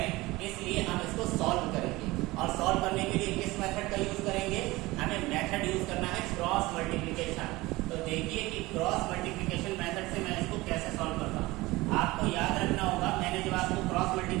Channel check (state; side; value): quieter; left; 20.4 dB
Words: इसलिए हम इसको सॉल्व करेंगे, और सॉल्व करने के लिए किस मेथड का यूज करेंगे, हमें मेथड यूज करना है क्रॉस मल्टीप्लिकेशन। तो देखिए कि क्रॉस मल्टीप्लिकेशन मेथड से मैं इसको कैसे सॉल्व करता हूँ। आपको याद रखना होगा, मैंने जब आपको क्रॉस